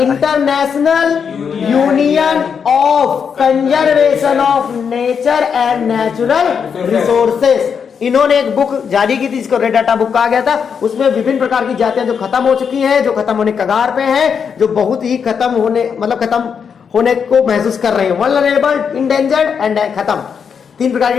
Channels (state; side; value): quieter; right; 6.7 dB